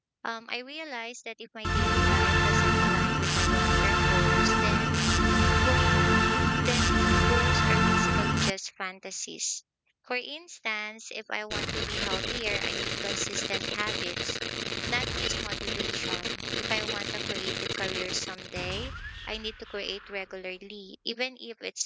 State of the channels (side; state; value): both; identical; correlation 1.00